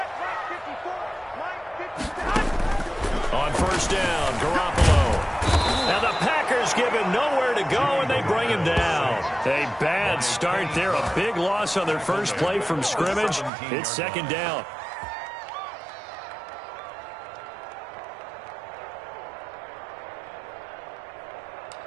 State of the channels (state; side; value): drops out; left; at 13.5 s